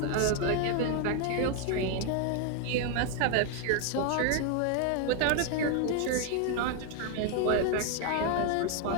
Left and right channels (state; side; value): different; both; correlation 0.01